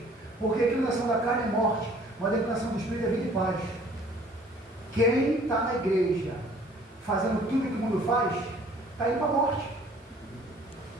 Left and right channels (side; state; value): both; normal; correlation 0.55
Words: Porque a inclinação da carne é morte, mas a inclinação do Espírito é vida e paz. Quem está na igreja fazendo tudo que o mundo faz, está indo para a morte.